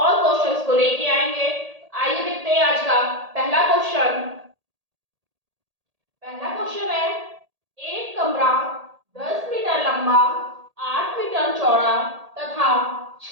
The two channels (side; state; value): left; late; 1.8 ms